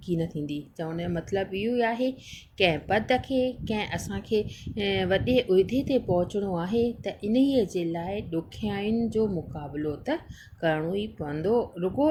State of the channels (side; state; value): both; identical; correlation 1.00